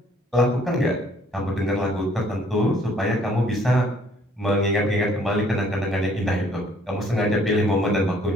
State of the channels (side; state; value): both; normal; correlation 0.61